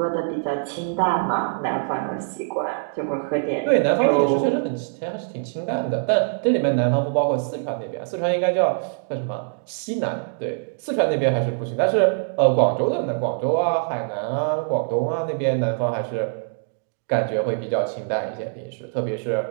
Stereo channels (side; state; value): left; silent; digital silence